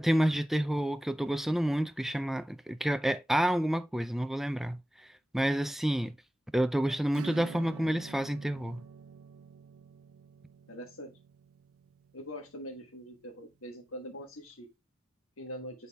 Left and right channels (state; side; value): normal; both; correlation 0.94